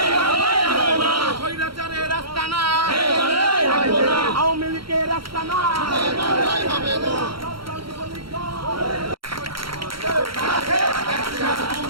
স্বৈরাচারের রাস্তা না, আওয়ামী লীগের রাস্তা না, এই বাংলায় হবে না।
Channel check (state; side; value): late; left; 0.74 ms